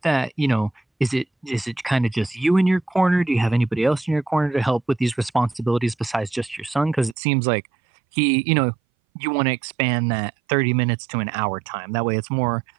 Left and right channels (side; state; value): left; drops out; at 7.2 s